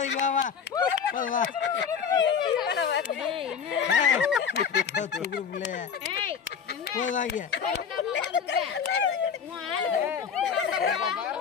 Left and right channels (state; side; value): quieter; right; 6.9 dB